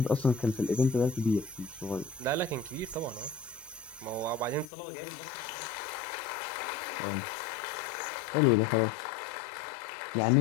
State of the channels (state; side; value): drops out; right; at 4.7 s